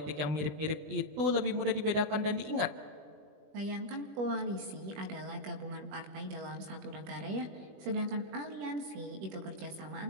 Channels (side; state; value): left; late; 21 ms